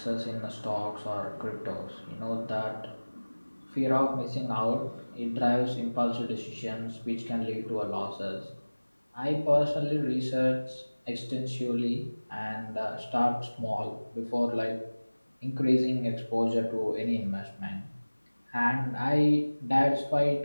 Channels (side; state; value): both; inverted; correlation -1.00